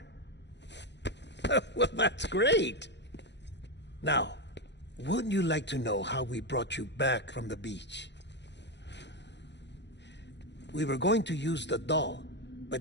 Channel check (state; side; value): late; right; 0.51 ms